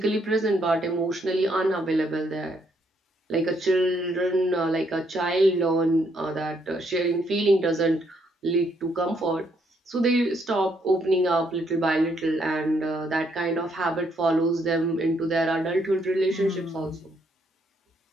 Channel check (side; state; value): both; normal; correlation 0.72